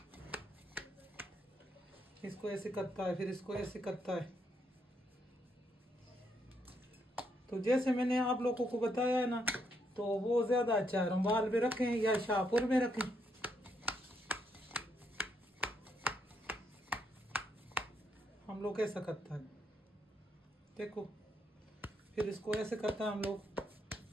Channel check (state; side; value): normal; both; correlation 0.76